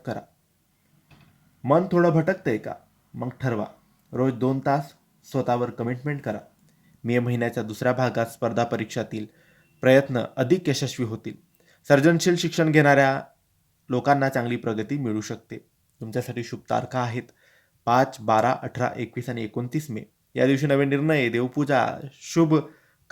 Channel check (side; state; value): both; identical; correlation 1.00